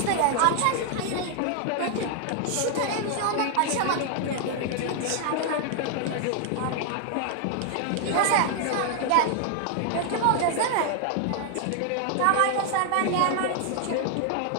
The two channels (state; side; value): different; both; correlation 0.00